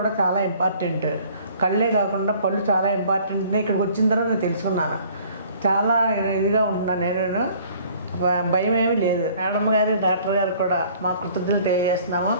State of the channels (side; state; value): both; inverted; correlation -0.54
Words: చాలా ఇంపార్టెంట్, కళ్ళే కాకుండా పళ్ళు చాలా ఇంపార్టెంట్. ఇక్కడికి వచ్చిన తర్వాత నేను తెలుసుకున్నాను. చాలా ఇదిగా ఉంటున్నాను. నేను భయం ఏమీ లేదు. మేడం గారు డాక్టర్ గారు కూడా మా కృతజ్ఞతలు తెలియజేస్తున్నాము.